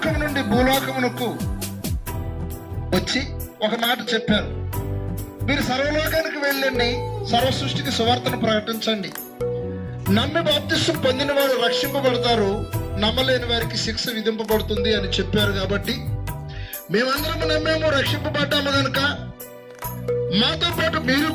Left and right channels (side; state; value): both; identical; correlation 1.00